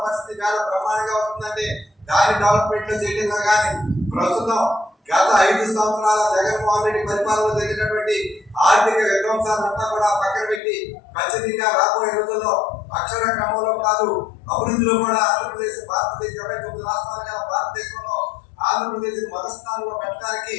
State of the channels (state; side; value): drops out; right; at 10.6 s